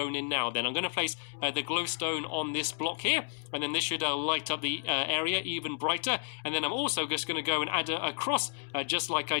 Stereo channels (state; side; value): silent; right; digital silence